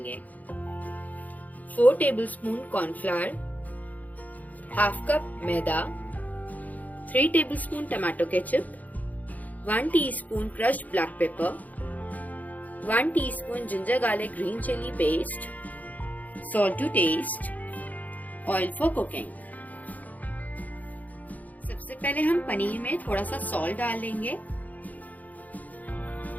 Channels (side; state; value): right; late; 0.078 ms